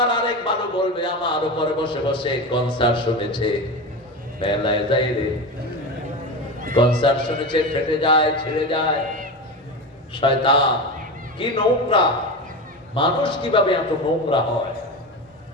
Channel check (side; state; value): both; normal; correlation 0.23